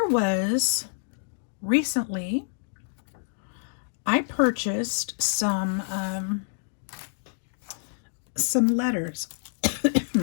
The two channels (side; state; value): right; silent; digital silence